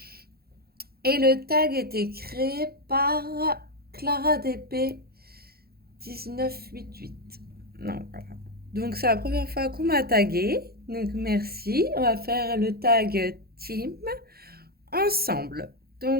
Et le tag était créé par Clara DP 1988. Non, voilà. Donc, c'est la première fois qu'on m'a taguée. Donc, merci. On va faire le tag team ensemble.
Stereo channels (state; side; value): late; left; 0.45 ms